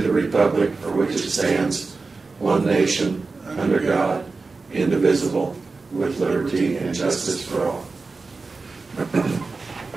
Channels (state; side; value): quieter; left; 4.0 dB